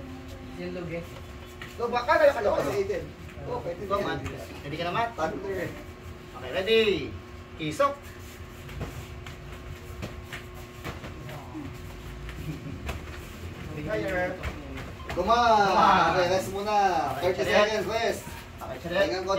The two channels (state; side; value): identical; both; correlation 1.00